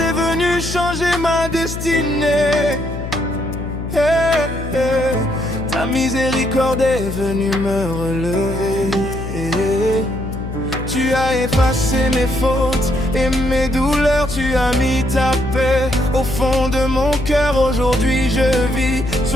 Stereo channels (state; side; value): noise; left; hum, 7 dB below the sound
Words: venue changer ma destinée. Hey, hey. Ta miséricorde est venue me relever. Tu as effacé mes fautes et mes douleurs, tu as mis ta paix au fond de mon cœur. Aujourd'hui je vis